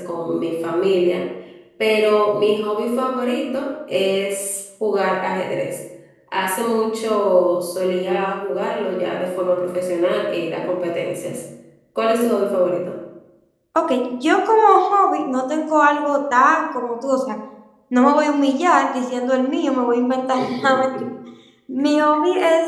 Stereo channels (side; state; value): both; identical; correlation 1.00